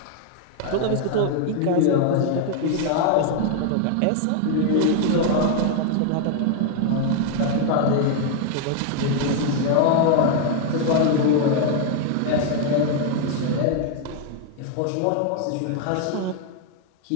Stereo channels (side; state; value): both; different; correlation 0.00